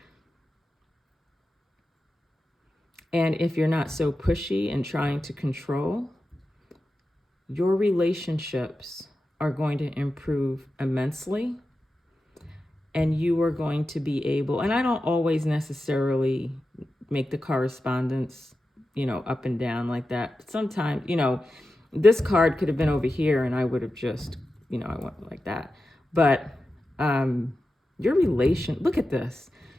And if you're not so pushy and trying to control, your relationships are going to improve immensely. And you are going to be able, and I don't always necessarily make the correspondence, up and down like that. Sometimes, this card could have been over here and I would have just, I went like that. But look at this.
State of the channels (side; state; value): both; normal; correlation 0.92